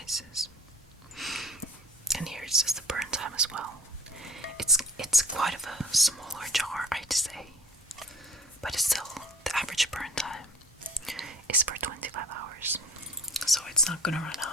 And here it says the burn time as well. It's quite of a smaller jar, I'd say, but it's still the average burn time is for 25 hours, so it's not gonna run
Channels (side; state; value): both; normal; correlation 0.45